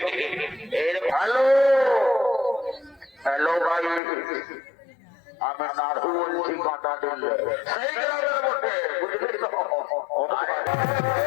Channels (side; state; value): right; drops out; at 4.0 s